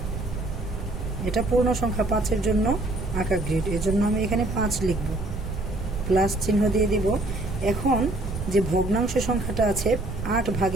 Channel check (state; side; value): noise; right; rumble, 6 dB below the sound